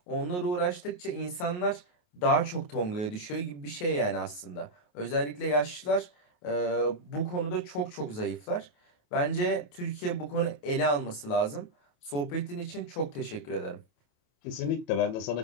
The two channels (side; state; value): right; late; 28 ms